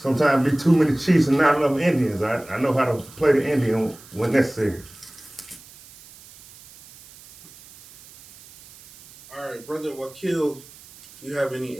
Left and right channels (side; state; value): right; noise; hiss, 22 dB below the sound